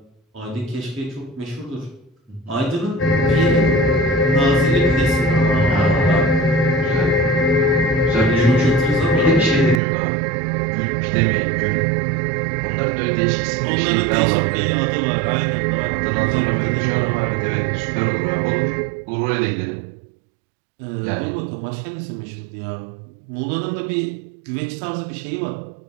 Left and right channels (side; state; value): left; drops out; at 9.8 s